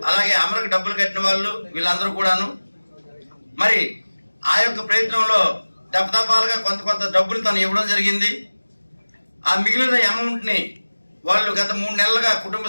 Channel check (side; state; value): both; inverted; correlation -1.00